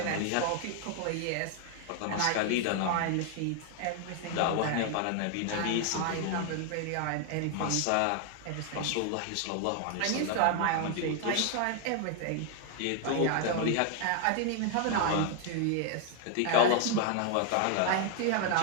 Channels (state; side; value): different; both; correlation 0.00